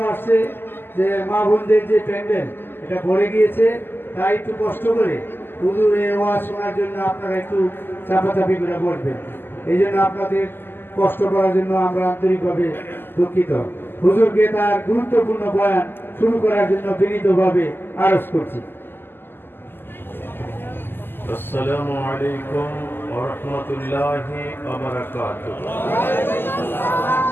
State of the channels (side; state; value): right; late; 0.099 ms